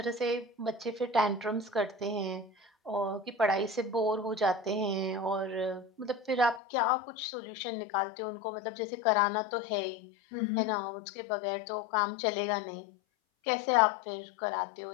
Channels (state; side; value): drops out; right; at 6.6 s